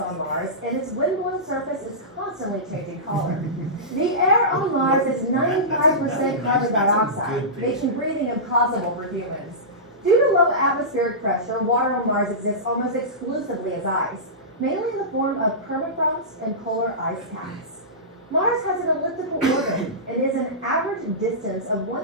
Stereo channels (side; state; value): both; normal; correlation -0.18